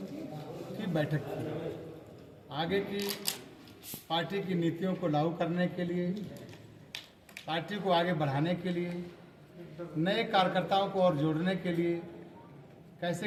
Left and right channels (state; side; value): identical; both; correlation 1.00